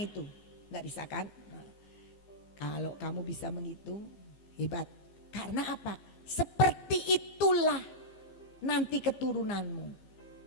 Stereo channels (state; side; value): late; right; 15 ms